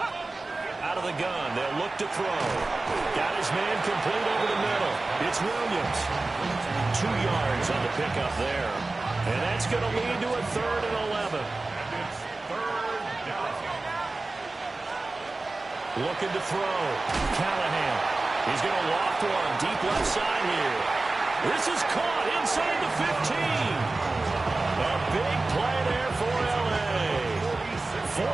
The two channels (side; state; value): left; quieter; 3.3 dB